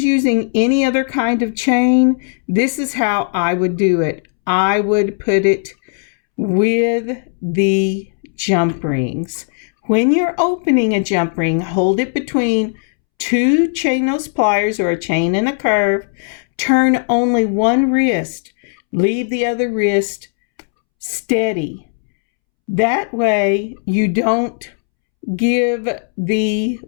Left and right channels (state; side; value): silent; right; 68 dB below the other